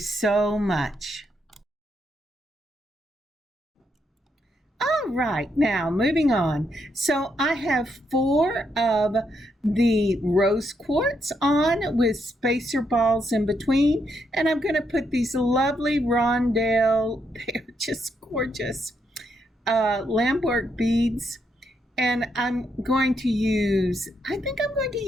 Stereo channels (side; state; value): both; normal; correlation 0.78